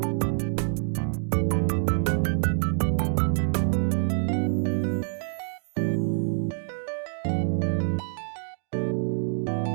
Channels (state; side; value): silent; left; 61 dB below the other